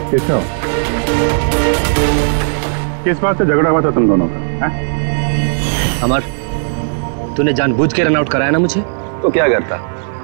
केशव, किस बात से झगड़ा हुआ था तुम दोनों का? अमर, तूने जानबूझ के रन आउट कराया ना मुझे? तो क्या करता?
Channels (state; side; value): silent; left; digital silence